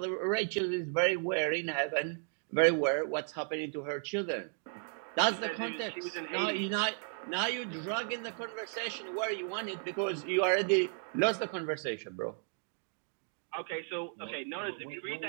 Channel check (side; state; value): left; silent; 55 dB below the other